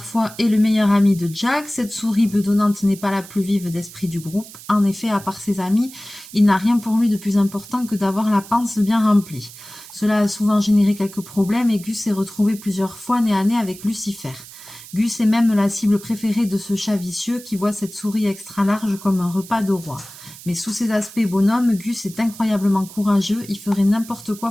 est le meilleur ami de Jack. Cette souris bedonnante n'est pas la plus vive d'esprit du groupe. En effet, à part ses amis, il n'a rien pour lui de plus important que d'avoir la panse bien remplie. Cela a souvent généré quelques problèmes et Gus s'est retrouvé plusieurs fois nez à nez avec Lucifer. Gus est même la cible préférée de ce chat vicieux qui voit cette souris extra large comme un repas de roi. Mais sous ses aspects bonhomme, Gus est incroyablement courageux, il ferait n'importe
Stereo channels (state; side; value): noise; right; hiss, 17 dB below the sound